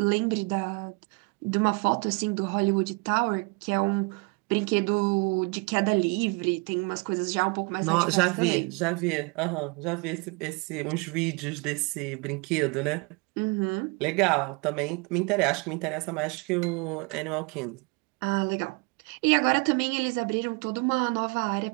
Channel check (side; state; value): left; quieter; 29.5 dB